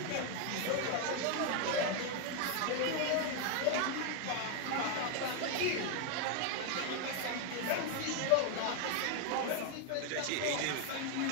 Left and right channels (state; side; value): different; both; correlation 0.01